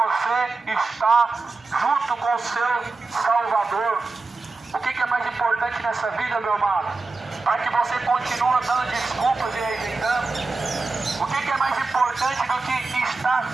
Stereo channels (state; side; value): quieter; left; 3.7 dB